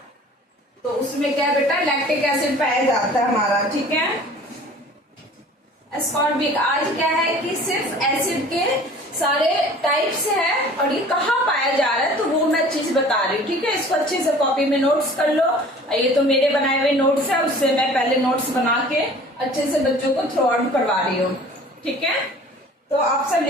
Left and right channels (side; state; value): both; normal; correlation 0.47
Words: तो उसमें क्या बेटा लैक्टिक एसिड पाया जाता है हमारा। ठीक है, एस्कॉर्बिक। आज क्या है कि सिर्फ एसिड के सारे टाइप्स हैं और ये कहाँ पाया जा रहा है तो वो मैं चीज बता रही हूँ, ठीक है। इसको अच्छे से कॉपी में नोट्स कर लो। ये तो मेरे बनाए हुए नोट्स है, उससे मैं पहले नोट्स बना के अच्छे से बच्चों को थ्रू आउट करवा रही हूँ, ठीक है। तो आप सब